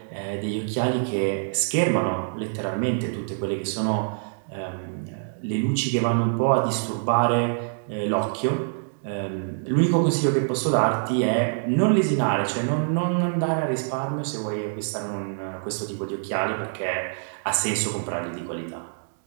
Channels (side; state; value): left; silent; digital silence